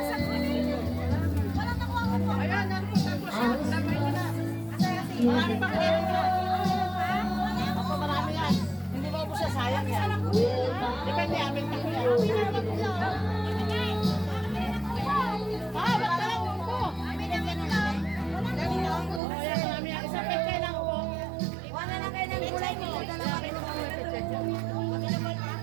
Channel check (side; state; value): left; drops out; at 19.2 s